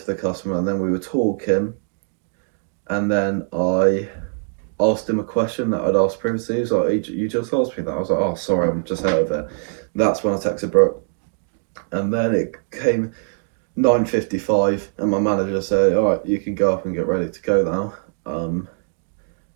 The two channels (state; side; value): silent; left; digital silence